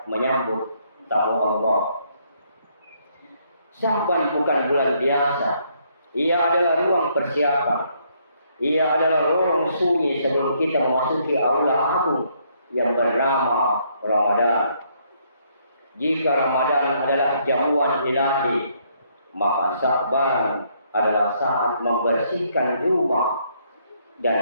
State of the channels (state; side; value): inverted; both; correlation -0.70